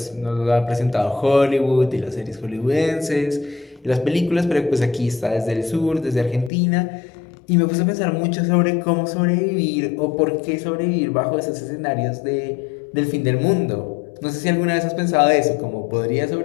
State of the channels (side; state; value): right; drops out; at 6.5 s